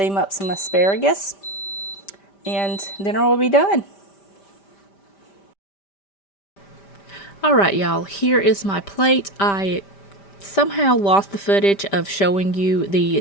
up some asparagus, and dinner will be done. Alright, y'all, here is my plate. I somehow lost the footage of showing you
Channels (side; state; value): right; late; 5.1 ms